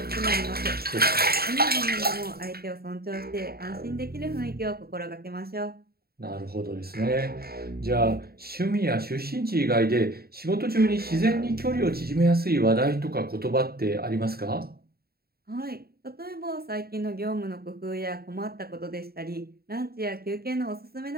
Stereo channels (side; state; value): left; late; 0.45 ms